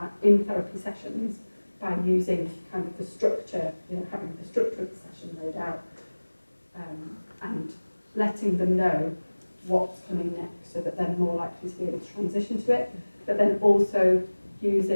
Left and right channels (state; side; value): inverted; both; correlation -1.00